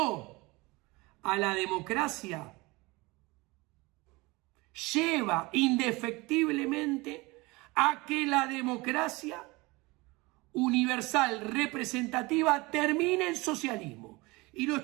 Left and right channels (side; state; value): left; quieter; 23.6 dB